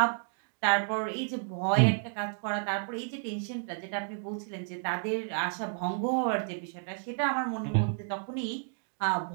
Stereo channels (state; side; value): silent; left; digital silence